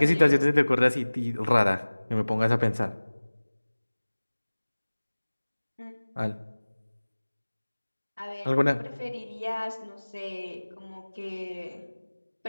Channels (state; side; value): inverted; both; correlation -1.00